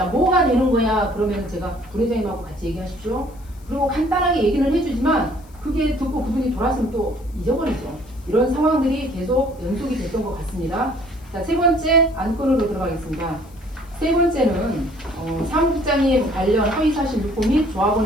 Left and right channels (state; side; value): noise; left; hiss, 28 dB below the sound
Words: 뭐가 되는 거야? 그러면 제가 부회장님하고 같이 얘기하십시오. 그리고 간단하게 얘기는 해주지만 그게 듣고 그분이 돌아서면 또 잊어버리죠. 이런 상황들이 계속 연속이 됐던 것 같습니다. 자, 세 번째 안건으로 들어가겠습니다. 세 번째는 사무국장님 관련 허위사실 유포 및